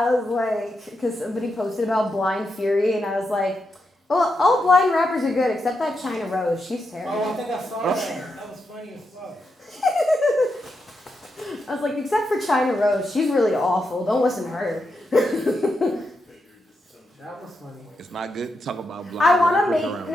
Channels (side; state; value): both; normal; correlation 0.85